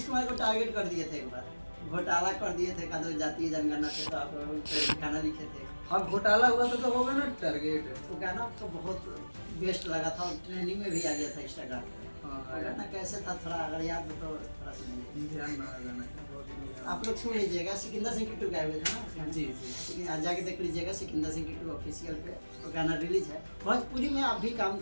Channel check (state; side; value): inverted; both; correlation -1.00